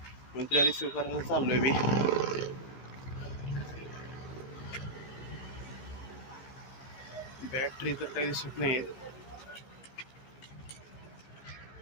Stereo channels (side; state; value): right; late; 14 ms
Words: मग तिला रिसिव्ह करायला चाललोय मी. बॅटरी तर काही